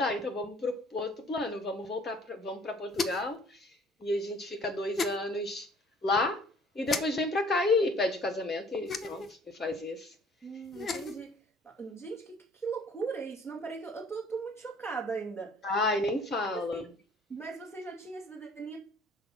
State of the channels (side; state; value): both; normal; correlation 0.55